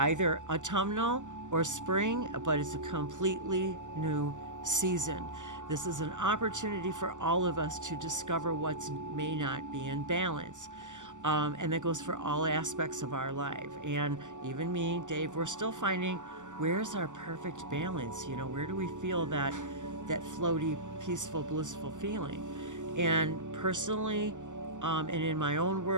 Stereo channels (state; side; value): late; left; 0.86 ms